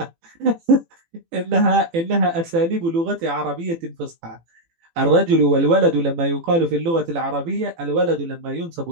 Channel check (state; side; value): late; left; 18 ms